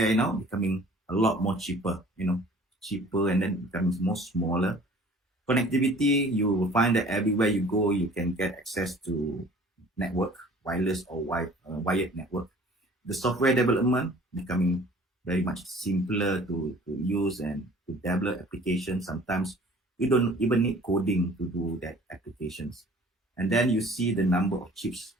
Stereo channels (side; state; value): both; normal; correlation 0.50